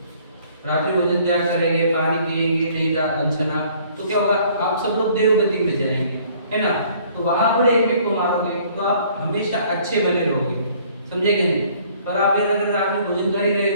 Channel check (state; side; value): inverted; both; correlation -0.58